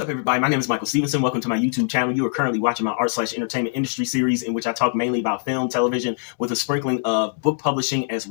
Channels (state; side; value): silent; right; digital silence